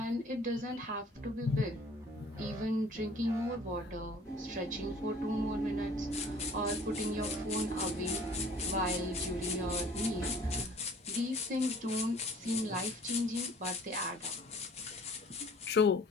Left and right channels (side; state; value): both; normal; correlation 0.52